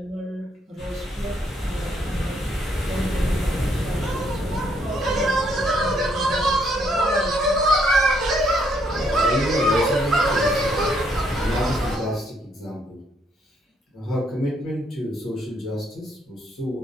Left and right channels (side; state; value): both; normal; correlation 0.71